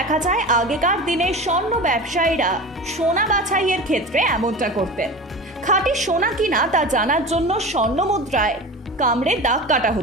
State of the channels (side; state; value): both; normal; correlation 0.32